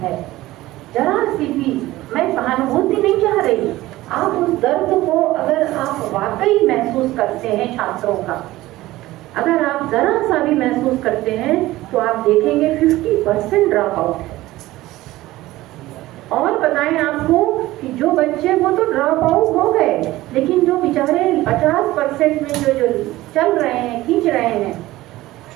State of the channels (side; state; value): left; quieter; 17.1 dB